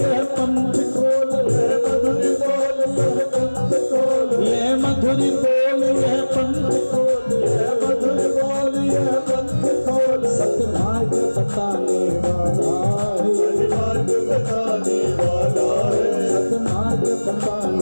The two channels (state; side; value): inverted; both; correlation -1.00